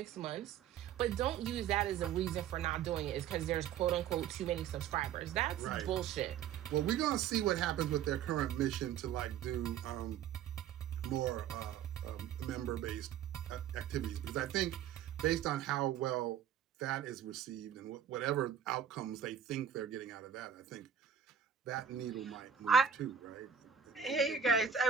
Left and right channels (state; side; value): quieter; left; 8.6 dB